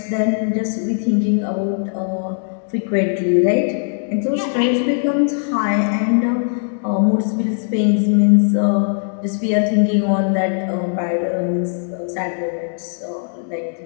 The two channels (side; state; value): right; silent; digital silence